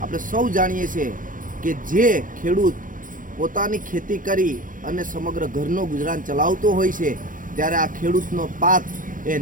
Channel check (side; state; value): left; late; 0.39 ms